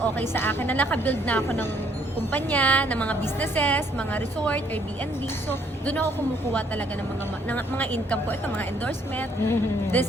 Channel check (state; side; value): normal; both; correlation 0.66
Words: sa akin na nakabuild na ako ng kumpanya, ng mga businesses, mga resort, Airbnb. So, doon ako kumukuha talaga ng mga income ko. Ito, mga endorsement. Mhm. This